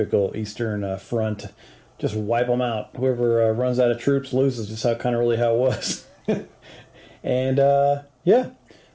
Eastern Front. Just wipe them out. Whoever runs out of troops loses, just how it was. And yeah,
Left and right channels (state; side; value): identical; both; correlation 1.00